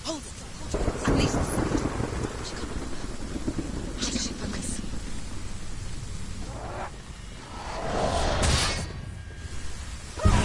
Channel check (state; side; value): identical; both; correlation 1.00